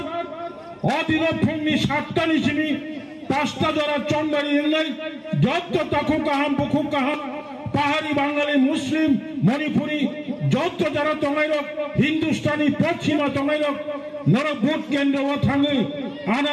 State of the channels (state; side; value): identical; both; correlation 1.00